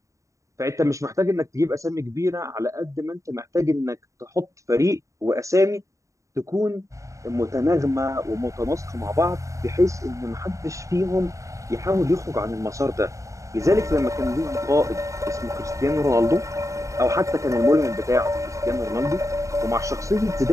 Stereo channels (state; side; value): late; left; 0.15 ms